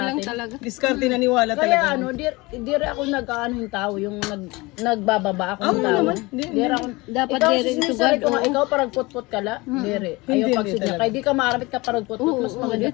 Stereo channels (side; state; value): right; quieter; 23.3 dB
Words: natin? talaga. diskarte naniwala Kaya talaga. ano, dire ako nag-ano yung tao, yung nagbababa ako ng Oo tao. naman. Di- Dire ako. Dapat Ikaw dire sinisari to ko God, nga, oo. ikaw parang put-put ka la. Dire. Hindi, Ayaw hindi pagsidya. talaga. Kaya di ka maarapit ka parang put-put, mas maganda